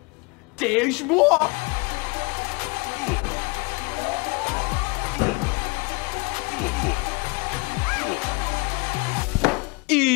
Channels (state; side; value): quieter; right; 28.7 dB